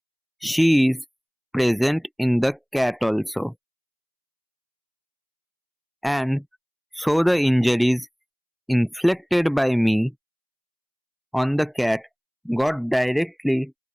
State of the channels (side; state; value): both; identical; correlation 1.00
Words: She is present in the cat also. And so the injuries inflicted by me on the cat got directly